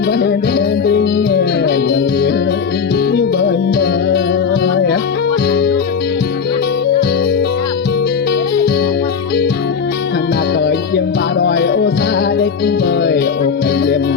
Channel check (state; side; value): quieter; right; 6.1 dB